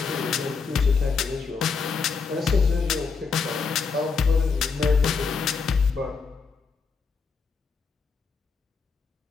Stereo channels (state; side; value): quieter; right; 5.1 dB